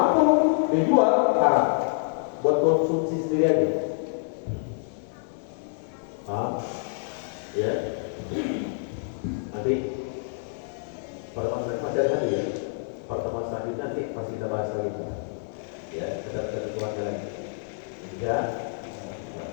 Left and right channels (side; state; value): right; silent; digital silence